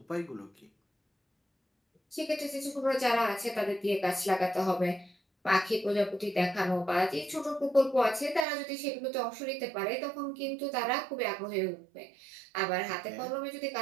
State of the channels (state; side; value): drops out; left; at 8.5 s